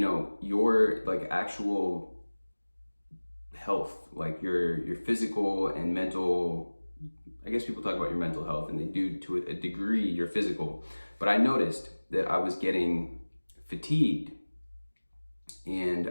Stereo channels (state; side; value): inverted; both; correlation -1.00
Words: like actual health, like your physical and mental. I guess people talk about your mental health and they do to a degree your physical, but I noticed that I was getting fatigued